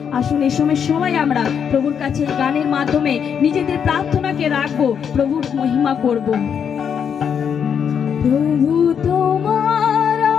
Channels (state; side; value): quieter; right; 7.6 dB